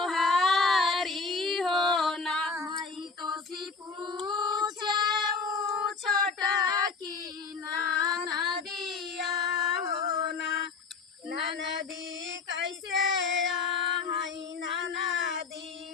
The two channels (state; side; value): quieter; right; 4.7 dB